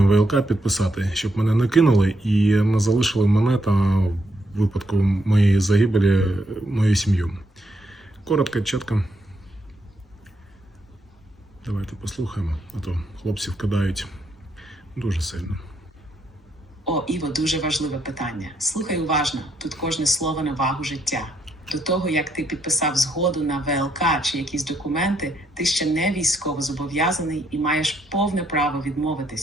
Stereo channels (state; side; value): normal; both; correlation 0.76